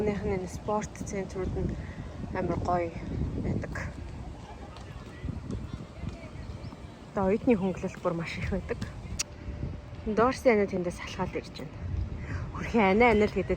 нь спорт центрууд нь амар гоё байдаг. Тэгээ оюутны хөнгөлөлт бүр маш их байдаг. Дорси анаа тэндээс салхаад ирж байна. Хөрхи анаа л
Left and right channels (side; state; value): both; identical; correlation 1.00